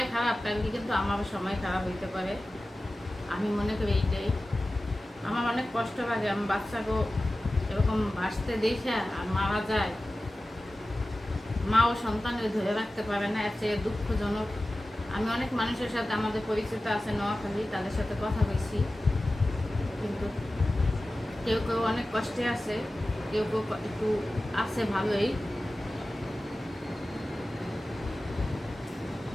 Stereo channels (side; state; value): both; normal; correlation 0.95